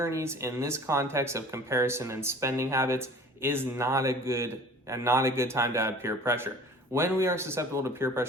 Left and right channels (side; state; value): both; normal; correlation 0.45